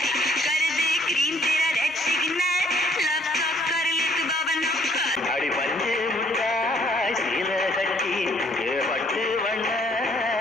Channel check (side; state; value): both; normal; correlation 0.63